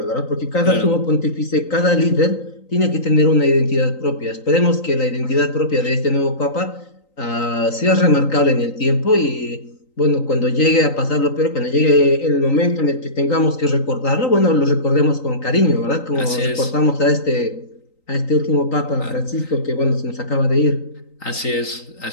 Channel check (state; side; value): late; right; 3.9 ms